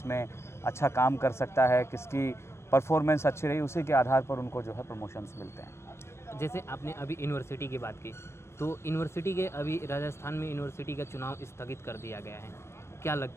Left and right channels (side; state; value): right; late; 0.13 ms